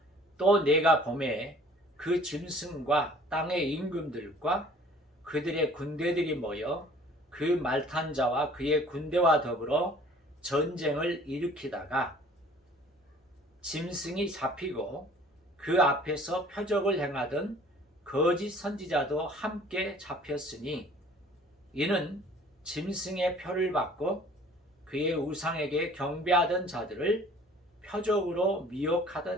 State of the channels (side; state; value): both; normal; correlation 0.52